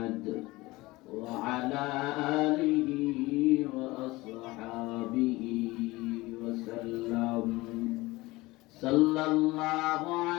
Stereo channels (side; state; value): right; quieter; 20.8 dB